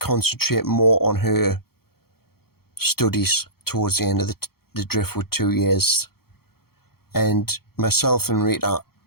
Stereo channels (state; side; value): late; right; 0.95 ms